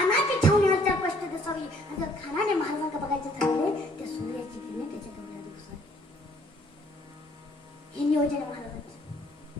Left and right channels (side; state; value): both; normal; correlation 0.62